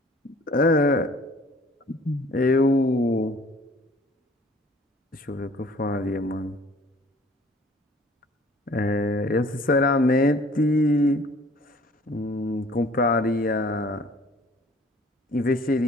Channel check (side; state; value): both; normal; correlation 0.53